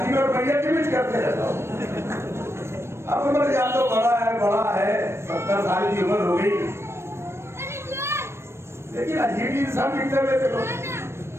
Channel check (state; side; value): late; left; 0.13 ms